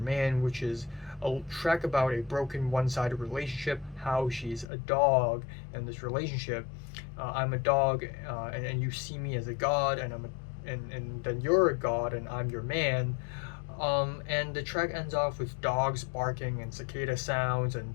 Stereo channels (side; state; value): right; drops out; at 4.7 s